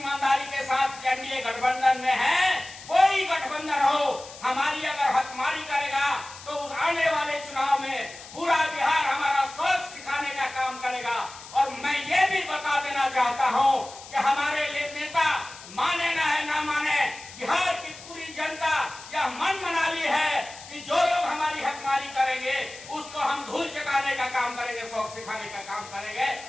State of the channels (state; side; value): noise; left; hiss, 16 dB below the sound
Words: के साथ एनडीए गठबंधन में हैं, कोई गठबंधन हो, हमारी अगर हकमारी करेगा तो उस आने वाले चुनाव में पूरा बिहार हमारा सोच सिखाने का काम करेगा। और मैं ये भी बता देना चाहता हूं कि हमारे नेता माने ना माने, बिहार की पूरी जनता यह मन बना ली है कि जो लोग हमारी हकमारी करेंगे उसको हम धूल चटाने का काम करेंगे, शौक सिखाने का काम करेंगे।